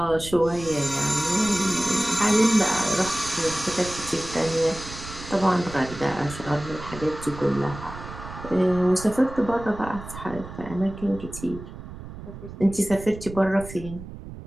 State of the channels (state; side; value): noise; right; rumble, 13 dB below the sound